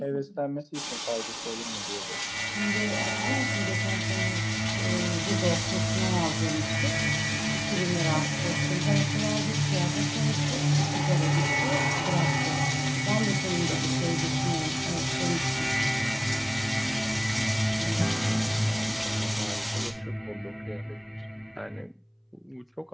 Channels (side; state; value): both; identical; correlation 1.00